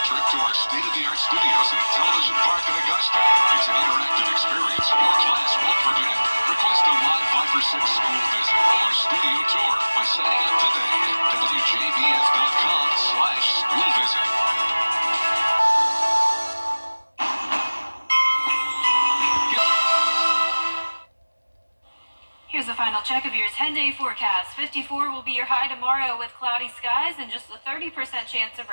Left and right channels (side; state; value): both; inverted; correlation -1.00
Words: trip to our state-of-the-art studios at Television Park in Augusta. It's an interactive experience your class won't forget. Request a live 5 for 6 school visit or studio tour by signing up today at WJBF.com/school visit. Here's a final check of your 10-day forecast. 54 will be your high tomorrow with cloudy skies and just a 30% chance of